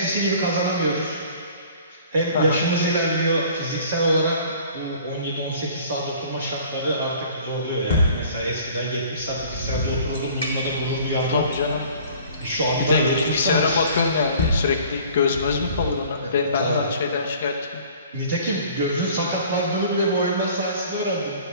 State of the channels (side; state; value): both; inverted; correlation -0.50